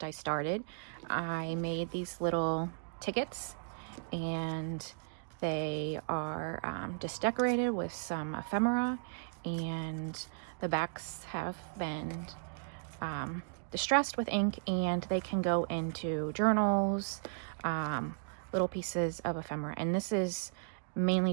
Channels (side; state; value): left; silent; digital silence